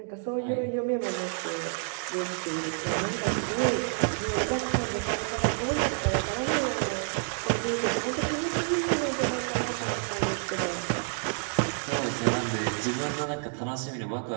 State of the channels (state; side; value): silent; left; 59 dB below the other